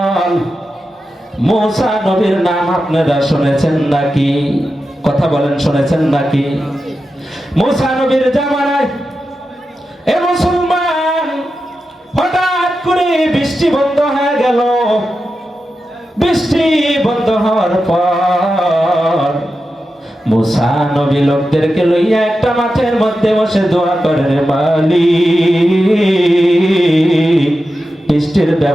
মুসা নবীর নাম আপনারা শুনেছেন নাকি? কথা বলেন, শুনেছেন নাকি? মুসা নবীর জামানায় এ মুসলমান হঠাৎ করে বৃষ্টি বন্ধ হয়ে গেল। বৃষ্টি বন্ধ হওয়ার পর মুসা নবী লোকদেরকে লইয়া একটা মাঠের মধ্যে বসে দোয়া করে, রে মালিক বৃষ্টির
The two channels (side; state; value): both; normal; correlation 0.90